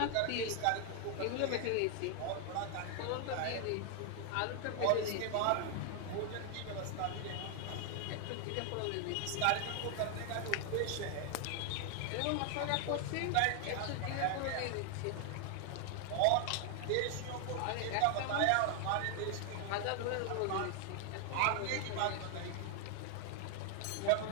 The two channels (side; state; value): both; different; correlation 0.00